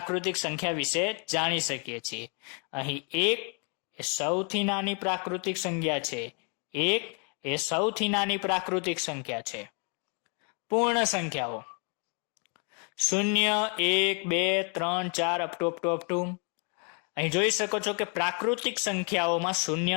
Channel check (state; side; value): quieter; right; 38.0 dB